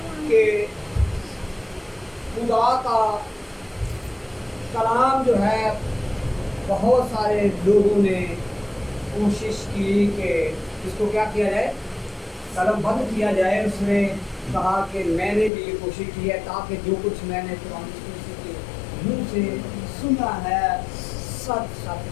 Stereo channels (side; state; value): right; drops out; at 15.5 s